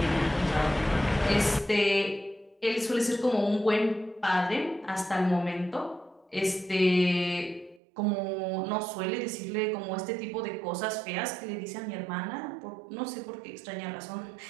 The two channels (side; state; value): left; drops out; at 7.8 s